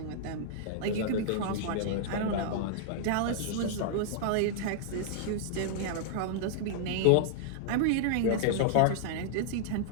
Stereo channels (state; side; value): different; both; correlation -0.01